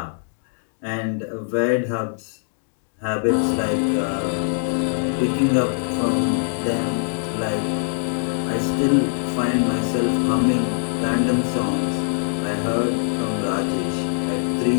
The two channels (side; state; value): right; silent; digital silence